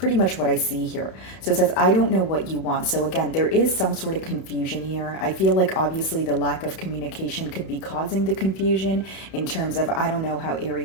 much what I see here. So it says, I don't know what you want. So again, there is some sort of confusion here. I feel like obviously the lack of communication could be causing the confusion in terms of, I don't know how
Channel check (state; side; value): late; right; 31 ms